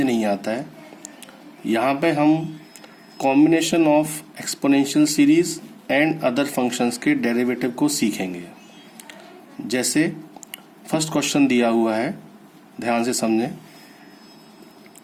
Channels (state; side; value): identical; both; correlation 1.00